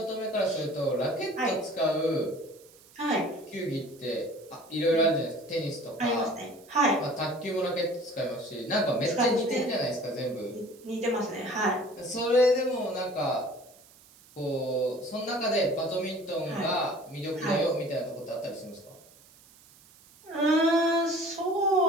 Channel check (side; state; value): right; noise; hiss, 25 dB below the sound